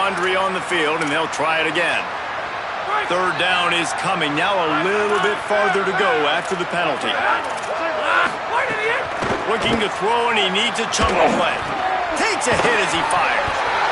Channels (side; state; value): both; identical; correlation 1.00